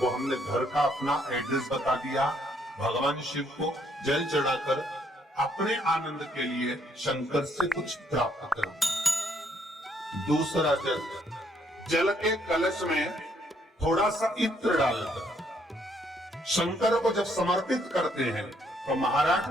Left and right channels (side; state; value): both; normal; correlation 0.69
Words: हमने घर का अपना एड्रेस बता दिया, भगवान शिव को जल चढ़ाकर अपने आनंद के लिए शंकर से कुछ प्राप्त करना। दूसरा जल, जल के कलश में थोड़ा सा इत्र डालकर शंकर को जब समर्पित करते हैं तो महाराज